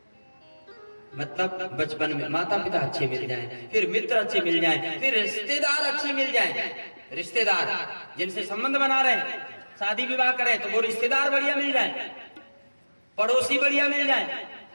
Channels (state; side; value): inverted; both; correlation -1.00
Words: मतलब बचपन में माता पिता अच्छे मिल जाएं, फिर मित्र अच्छे मिल जाएं, फिर रिश्तेदार अच्छे मिल जाएं। रिश्तेदार जिनसे संबंध बना रहे हैं, शादी विवाह करें तो वो रिश्तेदार बढ़िया मिल जाएं, पड़ोसी बढ़िया मिल जाएं।